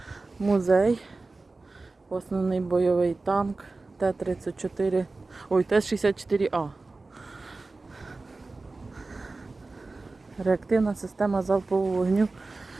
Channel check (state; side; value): quieter; left; 3.5 dB